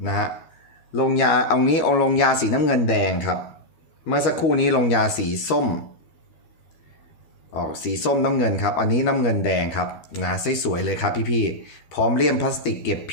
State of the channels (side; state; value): right; late; 12 ms